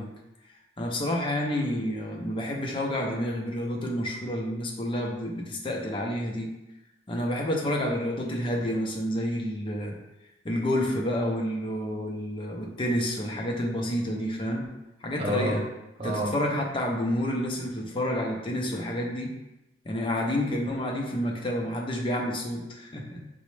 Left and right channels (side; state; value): both; normal; correlation 0.60